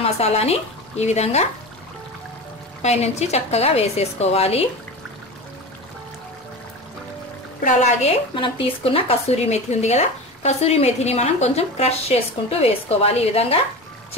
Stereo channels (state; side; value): normal; both; correlation 0.28